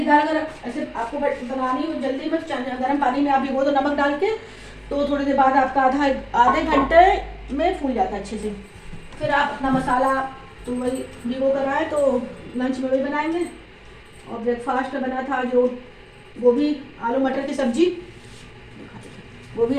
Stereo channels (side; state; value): both; identical; correlation 1.00